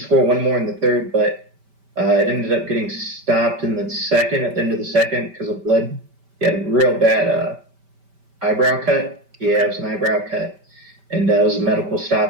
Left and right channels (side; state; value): left; late; 5.1 ms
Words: score one more in the third, but it ended up getting stopped in the second, at the end of the second, because of blood. He had a real bad eyebrow cut. Yeah, it was an eyebrow cut, and it was a medical